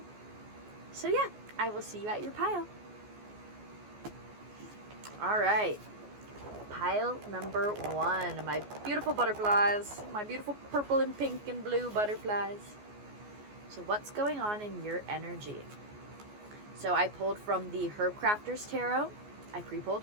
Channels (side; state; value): left; late; 14 ms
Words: yeah, I will see you at your pile. All right, pile number 1, my beautiful butterflies, my beautiful purple and pink and blue butterflies. So what's going on in your energy? So I pulled from the Herb Crafters Tarot, I pre-pulled,